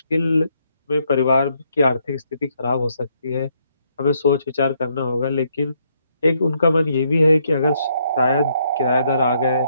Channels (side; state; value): both; inverted; correlation -0.73